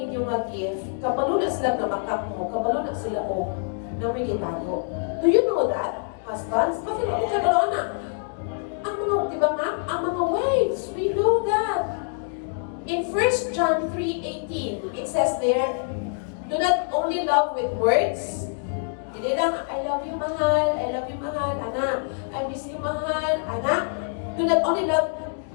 nga gift, kabalo na sila na makap mo, kabalo na sila o na may gitago. Do you know that, husbands? Bakit ako kabalo na? Ang mga, di ba ma'am? Ang mga wives, we know that. In 1 John 3:18, it says there, do not only love with words. Hindi lang, I love you, mahal, anak. I miss you, mahal, anak. Do not only love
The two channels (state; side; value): silent; right; digital silence